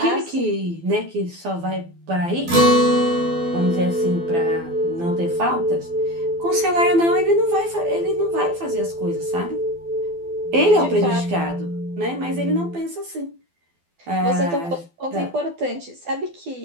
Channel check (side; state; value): left; late; 12 ms